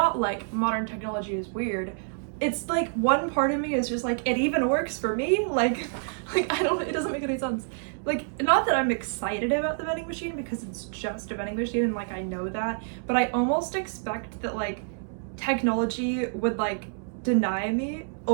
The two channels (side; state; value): left; silent; digital silence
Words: like modern technology is weird. It's like one part of me is just like, it even works for me. Like I don't, it doesn't make any sense. Like, not that I'm excited about the vending machine because it's just a vending machine and like I know that, but I almost expect that like technology would like deny me